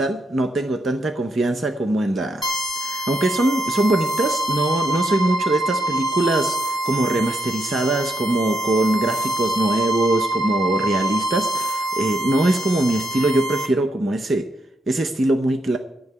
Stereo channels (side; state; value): both; normal; correlation 0.80